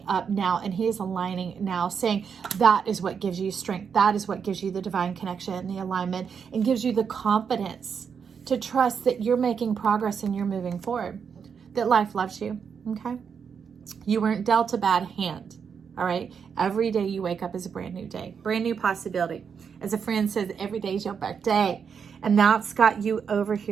up now, and he is aligning now, saying that is what gives you strength. That is what gives you the divine connection and the alignment, and gives you the confidence to trust that you're making progress and you're moving forward, that life loves you, okay? You weren't dealt a bad hand. All right. Every day you wake up is a brand new day, brand new possibility. As a friend says, every day is your birthday. And that's got you over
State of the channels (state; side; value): quieter; left; 6.6 dB